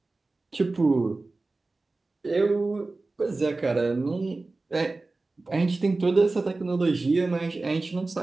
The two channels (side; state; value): left; quieter; 3.3 dB